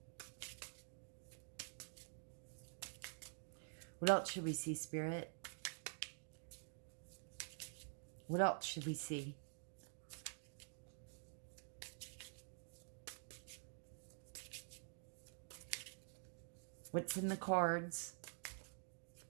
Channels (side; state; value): left; silent; digital silence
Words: What else should we see, Spirit? What else should we see? What's in the cards?